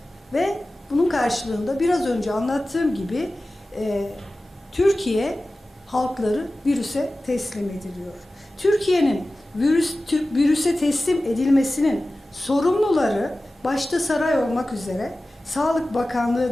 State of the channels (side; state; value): both; normal; correlation 0.96